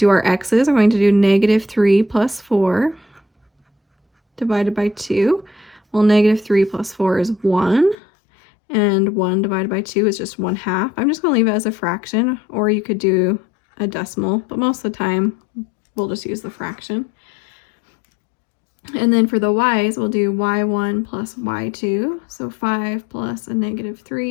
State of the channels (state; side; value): drops out; right; at 8.0 s